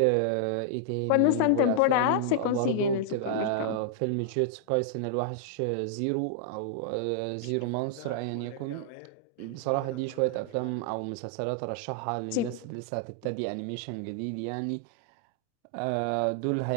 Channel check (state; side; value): different; both; correlation -0.01